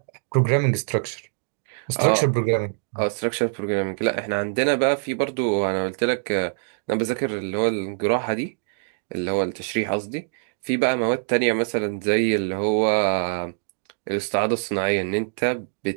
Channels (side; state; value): left; silent; digital silence